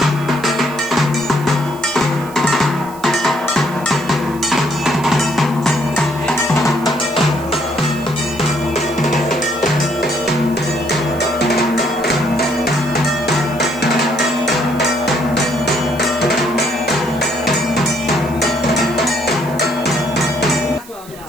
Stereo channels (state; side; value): noise; right; hiss, 20 dB below the sound